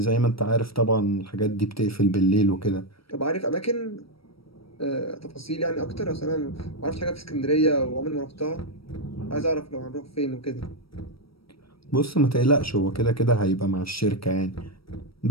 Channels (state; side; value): late; right; 0.75 ms